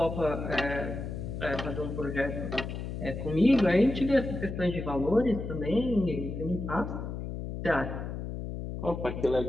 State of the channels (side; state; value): left; noise; hum, 6 dB below the sound